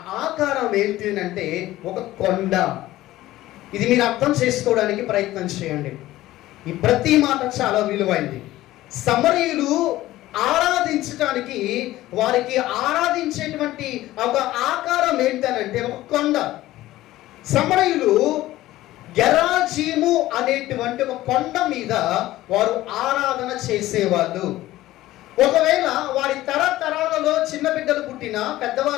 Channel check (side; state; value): right; quieter; 15.9 dB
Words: ఆకారం ఏంటి అంటే ఒక కొండ. ఇది మీరు అర్థం చేసుకోవడానికి ప్రయత్నం చేయండి. ఈ ప్రతి మాట చాలా విలువైంది. సమరయులు ఆరాధించడానికి వారికి ఆరాధించేటువంటి ఒక ఆకారం ఏంటనంటే ఒక కొండ. సమరయులు గెరాజీము అనేటువంటి ఒక కొండ మీద వారు ఆరాధన చేసేవాళ్ళు. ఒకవేళ వారి తరతరాలలో చిన్న బిడ్డలు పుట్టినా